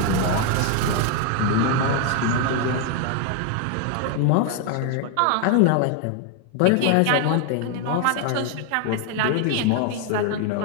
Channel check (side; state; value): both; different; correlation 0.01